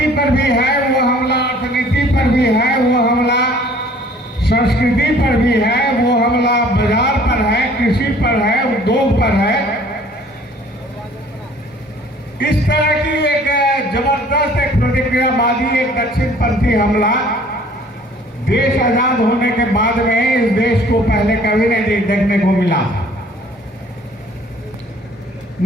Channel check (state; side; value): normal; both; correlation 0.54